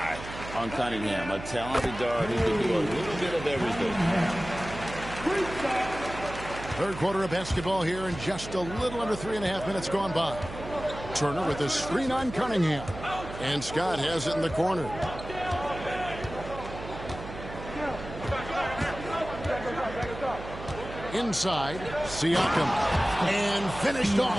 on Cunningham. A talented guard who can do a little bit of everything. Third quarter of basketball here, and just a little under 3.5 minutes gone by. Turner with a screen on Cunningham. And Scott has it in the corner. Inside, Siakam. And finished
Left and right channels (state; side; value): noise; right; hum, 11 dB below the sound